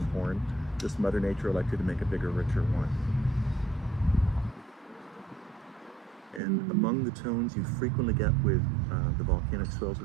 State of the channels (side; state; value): left; drops out; at 6.4 s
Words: horn. Just Mother Nature elected to make a bigger, richer wine. And among the tones you frequently get with the volcanic soils